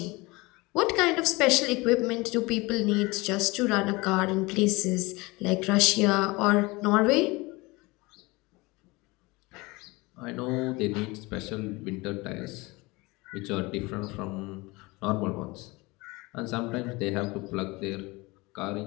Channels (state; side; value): quieter; right; 23.6 dB